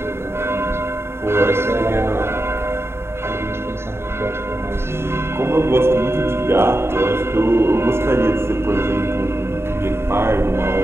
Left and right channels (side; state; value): left; late; 0.12 ms